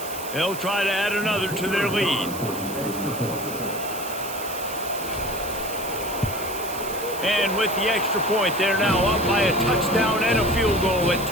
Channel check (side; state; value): right; noise; hiss, 11 dB below the sound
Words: They'll try to add another to their lead. And with the extra point, they're now up by a touchdown and a field goal at